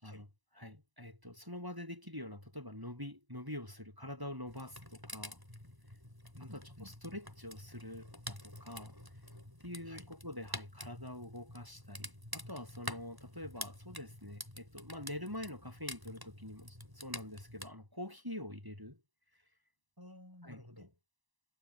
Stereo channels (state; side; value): late; left; 1.0 ms